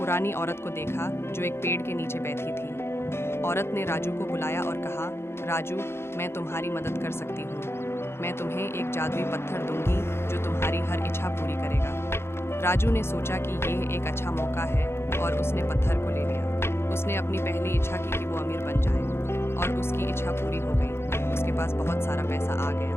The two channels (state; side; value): late; right; 0.12 ms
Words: औरत को देखा जो एक पेड़ के नीचे बैठी थी। औरत ने राजू को बुलाया और कहा, राजू, मैं तुम्हारी मदद कर सकती हूँ। मैं तुम्हें एक जादुई पत्थर दूंगी जो तुम्हारी हर इच्छा पूरी करेगा। राजू ने सोचा कि यह एक अच्छा मौका है और उसने पत्थर को ले लिया। उसने अपनी पहली इच्छा की कि वो अमीर बन जाए और उसकी इच्छा पूरी हो गई। उसके पास बहुत सारा पैसा आ